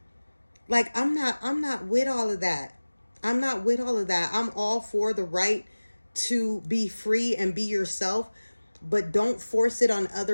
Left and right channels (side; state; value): both; inverted; correlation -1.00